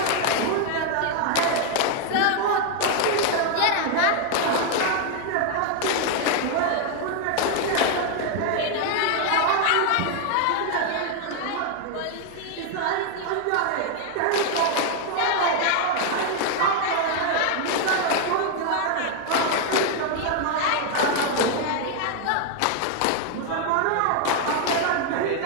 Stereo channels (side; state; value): both; different; correlation 0.00